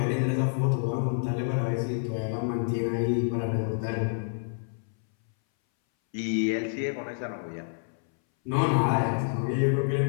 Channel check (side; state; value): right; silent; 59 dB below the other